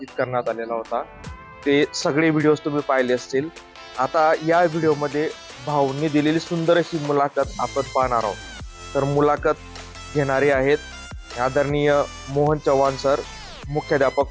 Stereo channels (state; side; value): identical; both; correlation 1.00